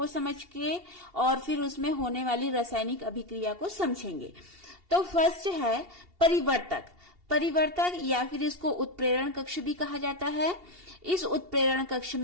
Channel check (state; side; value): late; left; 2.8 ms